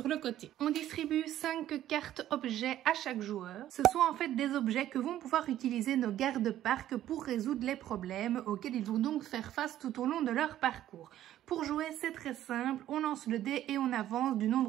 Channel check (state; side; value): quieter; left; 12.6 dB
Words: le côté. On distribue 5 cartes objets à chaque joueur. Ce sont en fait des objets que vont pouvoir utiliser nos gardes-parcs pour résoudre les problèmes auxquels ils vont donc faire face tout au long de leur parcours. Pour jouer, c'est très simple, on lance le dé et on avance du